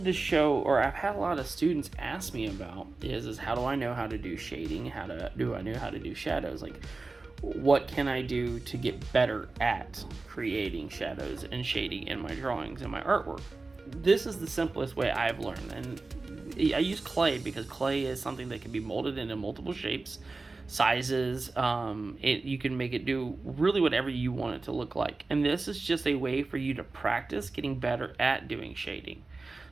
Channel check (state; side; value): quieter; left; 3.6 dB